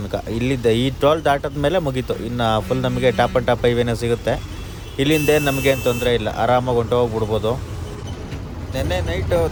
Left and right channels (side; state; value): both; identical; correlation 1.00